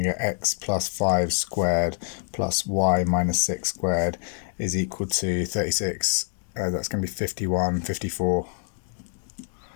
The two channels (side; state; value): right; silent; digital silence